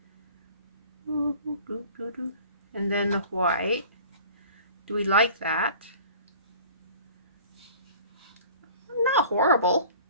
And then the white. Do we like that? Not horrible.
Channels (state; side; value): inverted; both; correlation -0.46